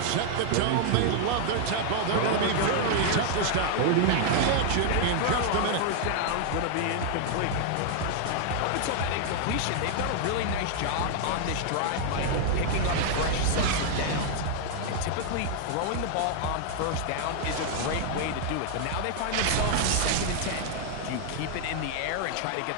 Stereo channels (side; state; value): both; different; correlation 0.00